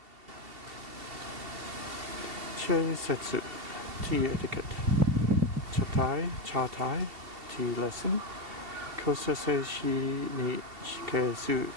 Chei Setsu, tea etiquette. Chatai, tea lesson. Kosase shi ni shikesu.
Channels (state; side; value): late; left; 2.7 ms